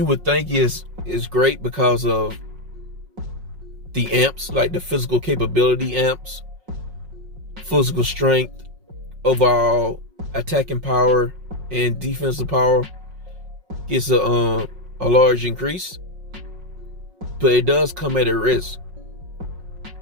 would think is great because of the amps, like the physical capability amps, physical strength, overall attacking power, and defensive power gets a large increase, but it does come at a risk.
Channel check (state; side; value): late; left; 5.5 ms